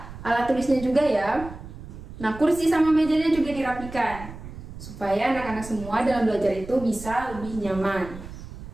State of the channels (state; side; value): noise; right; rumble, 13 dB below the sound